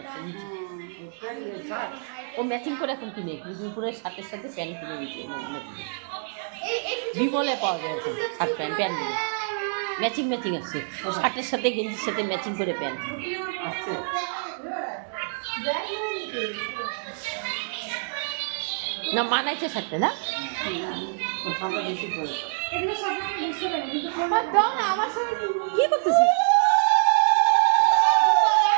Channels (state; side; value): silent; left; 61 dB below the other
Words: আছে নিচে। ও ম্যাচিং করে এখন কিনে দুপুরের সাথে সাথে প্যান্ট কিনে নিচ্ছে। বিমলে পাওয়া যায় এখন শার্ট প্যান্ট প্যান্টগুলো ম্যাচিং ম্যাচিং আছে, শার্টের সাথে গেঞ্জির সাথে ম্যাচিং করে প্যান্ট না মানাইছে শার্টটা না কি করতেছি